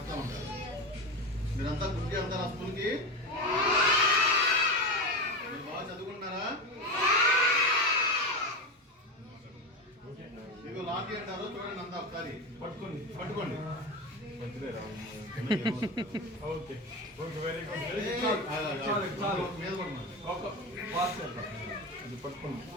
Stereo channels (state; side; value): normal; both; correlation 0.20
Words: ఉంటారు. మీరంతా గుర్తి వెళ్తారు ఆ స్కూల్కి? మీరు బాగా చదువుకుంటున్నారా? మీకు లాఠీ అంటారు, చూడండి అంతా ఒకసారి పట్టుకోండి పట్టుకోండి. ఓకే ఓకే వెరీ గుడ్ మీద పట్టుకోండి